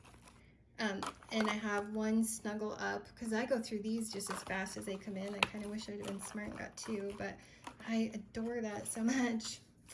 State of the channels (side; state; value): both; identical; correlation 1.00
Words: And I have 1 Snuggle Up, because I go through these just as fast as they come in. I kind of wish I'd have been smart and got 2, but I adore that so much.